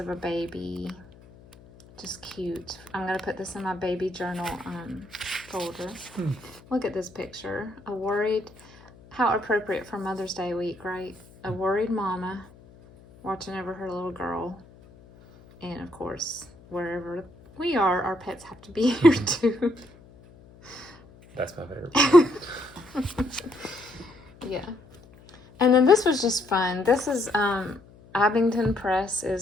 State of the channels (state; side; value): noise; left; hum, 23 dB below the sound